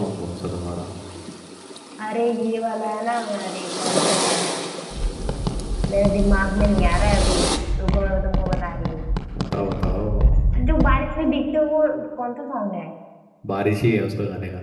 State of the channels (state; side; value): identical; both; correlation 1.00